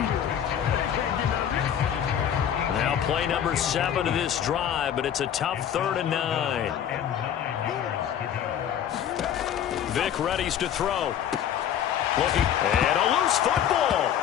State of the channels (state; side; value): quieter; right; 9.6 dB